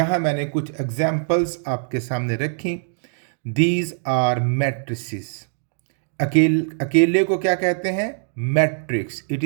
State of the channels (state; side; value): silent; left; 63 dB below the other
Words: मैंने कुछ एग्जाम्पल्स आपके सामने रखी. These are matrices. अकेले को क्या कहते हैं? Matrix. It